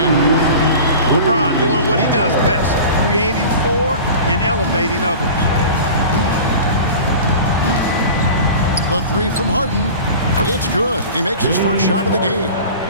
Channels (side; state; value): both; inverted; correlation -0.37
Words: LeBron doing what he does best, creating for and elevating others. The three from Harden. It's good. He makes his first shot of the game.